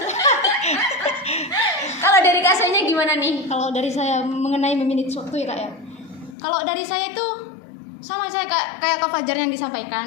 Kalau dari Kak Sohinya gimana nih? Kalau dari saya mengenai memanage waktu ya Kak ya. Kalau dari saya itu sama saya kayak Kak Fajar yang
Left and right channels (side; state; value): right; drops out; at 6.4 s